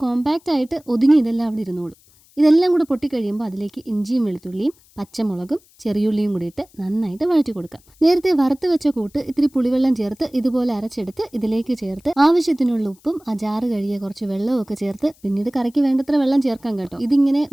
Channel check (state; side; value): noise; left; hiss, 30 dB below the sound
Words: കോമ്പാക്റ്റ് ആയിട്ട് ഒതുങ്ങി ഇതെല്ലാം അവിടെ ഇരുന്നോളും. ഇതെല്ലാം കൂടെ പൊട്ടിക്കഴിയുമ്പോൾ അതിലേക്ക് ഇഞ്ചിയും വെളുത്തുള്ളിയും പച്ചമുളകും ചെറിയുള്ളിയും കൂടി ഇട്ട് നന്നായിട്ട് വഴറ്റി കൊടുക്കാം. നേരത്തെ വറുത്ത് വെച്ച കൂട്ട് ഇത്തിരി പുളിവെള്ളം ചേർത്ത് ഇതുപോലെ അരച്ചെടുത്ത് ഇതിലേക്ക് ചേർത്ത് ആവശ്യത്തിനുള്ള ഉപ്പും അജാറ് കഴുകിയ കുറച്ച് വെള്ളവും ഒക്കെ ചേർത്ത് പിന്നീട് കറിക്ക് വേണ്ടത്ര വെള്ളം ചേർക്കാം കേട്ടോ. ഇതിങ്ങനെ